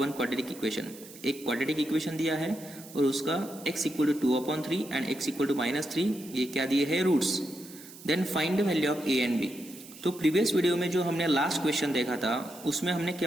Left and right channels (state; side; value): noise; right; hiss, 18 dB below the sound